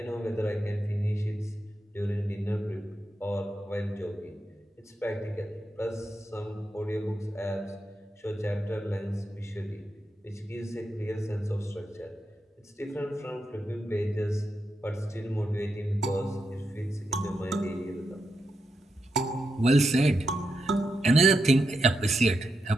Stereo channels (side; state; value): both; normal; correlation 0.85